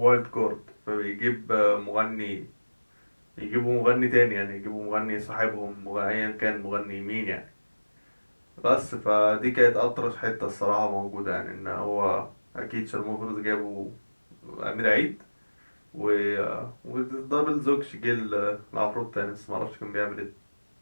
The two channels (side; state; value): both; inverted; correlation -1.00